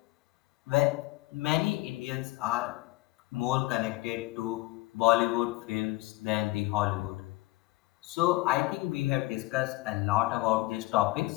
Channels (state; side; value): quieter; right; 20.4 dB